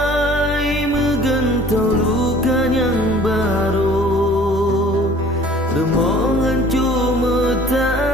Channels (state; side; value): normal; both; correlation 0.51